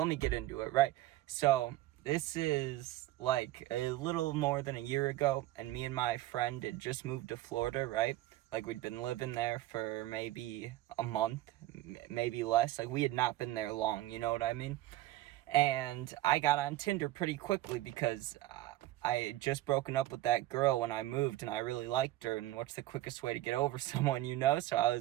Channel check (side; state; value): left; quieter; 15.9 dB